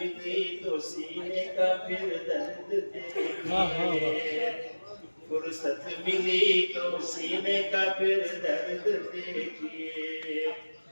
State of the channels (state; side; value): inverted; both; correlation -1.00